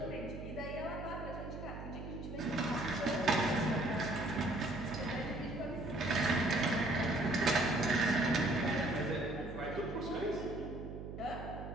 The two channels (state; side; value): noise; right; hum, 9 dB below the sound